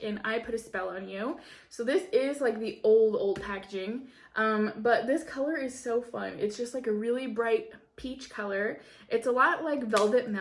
in I Put a Spell on You. So this is like the old packaging, but this color is so fun. It's just like a really bright peach color. It's a lot like Velvet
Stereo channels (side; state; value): both; identical; correlation 1.00